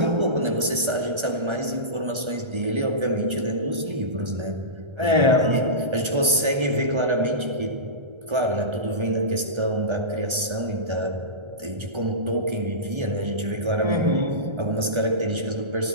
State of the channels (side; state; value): left; late; 1.3 ms